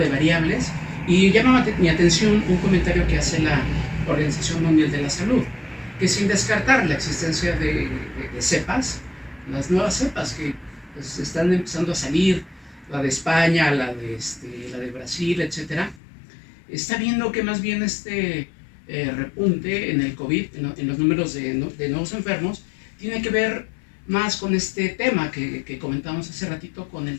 variables, y llama mi atención un comentario que hace la Organización Mundial de la Salud, que sin descartar la existencia de cepas, las nuevas cepas que pues, están empezando a salir, la de España, la de Brasil, etcétera, está viendo que más bien repunte en el COVID, en los números de nuevos enfermos, tiene que ver más con este tema que comentamos hace ratito, con el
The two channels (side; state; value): right; drops out; at 16.0 s